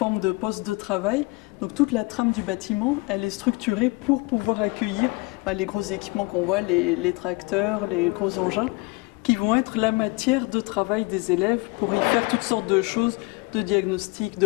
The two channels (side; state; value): right; quieter; 24.6 dB